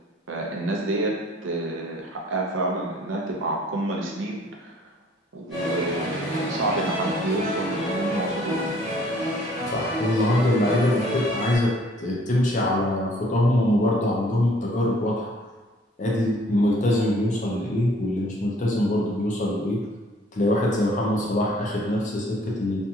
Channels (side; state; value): both; normal; correlation 0.58